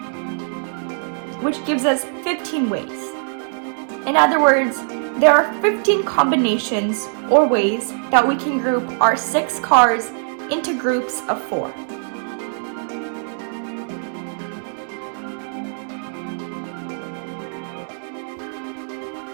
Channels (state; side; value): silent; left; digital silence